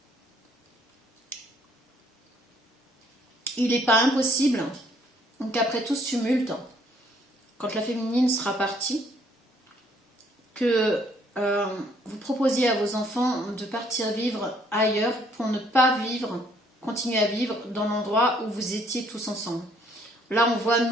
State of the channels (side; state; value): both; normal; correlation 0.65